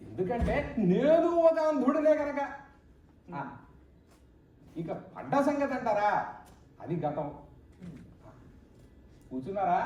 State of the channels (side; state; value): both; identical; correlation 1.00